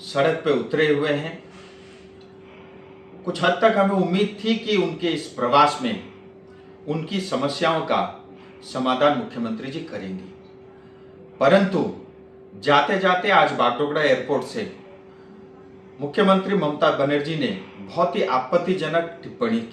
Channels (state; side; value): identical; both; correlation 1.00